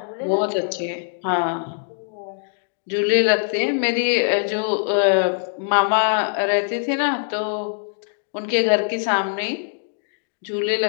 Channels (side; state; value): right; silent; digital silence